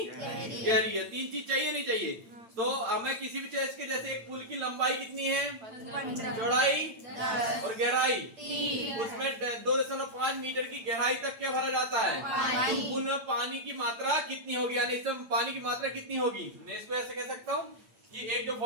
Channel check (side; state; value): left; late; 8.9 ms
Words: गहरी है। 3 चीज चाहिए नहीं चाहिए? तो हमें किसी भी चीज के, जैसे एक पुल की लंबाई कितनी है, 15, चौड़ाई 10 और गहराई, 3 उसमें 2.5 मीटर की गहराई तक क्या भरा जाता है, पानी। उनमें पानी की मात्रा कितनी होगी, यानी इसमें पानी की मात्रा कितनी होगी। मैं इसको ऐसे कह सकता हूँ कि एक जो